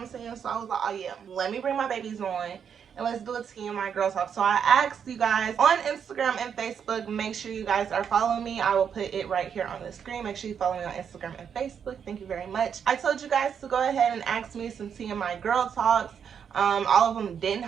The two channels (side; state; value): left; quieter; 7.6 dB